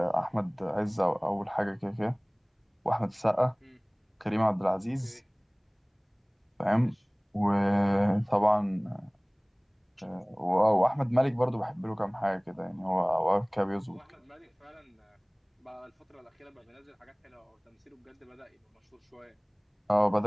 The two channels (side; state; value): both; identical; correlation 1.00